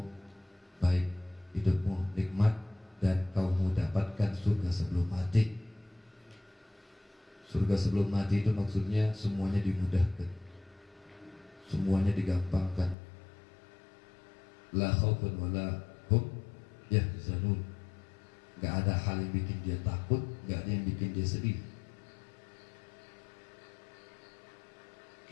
baik, hidupmu nikmat, dan kamu dapatkan surga sebelum mati. Surga sebelum mati itu maksudnya semuanya dimudahkan, semuanya digampangkan. La khaufun wala hum yahzanun. Gak ada hal yang bikin dia takut, gak ada yang bikin dia sedih.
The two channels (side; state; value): right; drops out; at 13.0 s